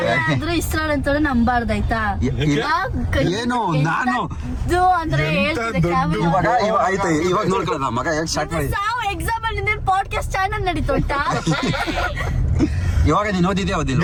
ಆದ್ರೂ ಇಸ್ರಾಲ್ ಅಂತ ನಂಬಾರ್ದಾಯ್ತಾ? ಏನು ನಾನು ಅಂದ್ರೆ ಆಯ್ತು ಇವಾಗ ನೋಡ್ಕೊಳ್ಳೋಣ ಮಗ ಹೇಗೆ ಸ್ಟಾರ್ಟ್ ಮಾಡಿ. ಎಕ್ಸಾಮ್ ಅಲ್ಲಿ ಪಾಡ್ಕಾಸ್ಟ್ ಚಾನಲ್ ನಡೀತೋಟ. ಇವಾಗ ನೀನು ಓದಿದ್ಯಾ ಓದಿಲ್ಲ?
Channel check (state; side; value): identical; both; correlation 1.00